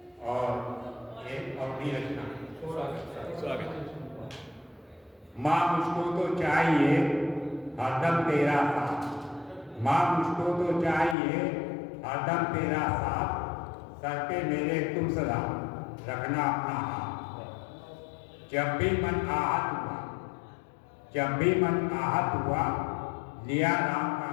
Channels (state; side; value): drops out; right; at 11.2 s